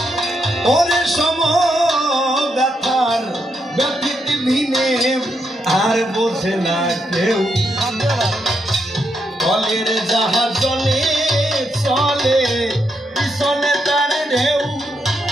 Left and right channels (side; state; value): both; normal; correlation 0.80